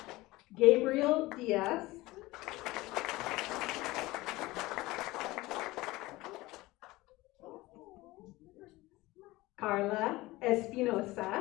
Gabriel Diaz. Carla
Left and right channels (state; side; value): quieter; right; 19.8 dB